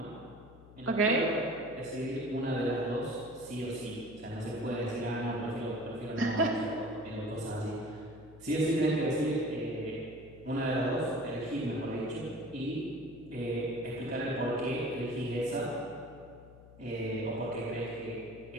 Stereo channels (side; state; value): left; noise; hum, 20 dB below the sound